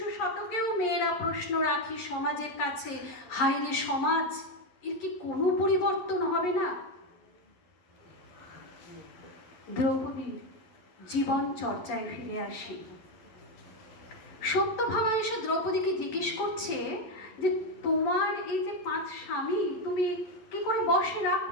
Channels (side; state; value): right; late; 11 ms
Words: শতকেও মেয়েরা প্রশ্ন রাখি সমাজের কাছে, হায় রে সমাজ, এর কি কোনো পরিবর্তন হবে না? দ্রৌপদীর জীবন চর্চায় ফিরে আসি। সত্যভামা এসে দ্রৌপদীকে জিজ্ঞেস করছে যে তোমার এই যে 5 স্বামী, তুমি কি করে বশে